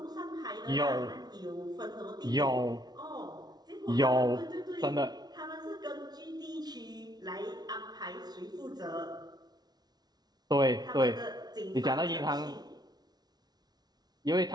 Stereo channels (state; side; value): late; left; 0.19 ms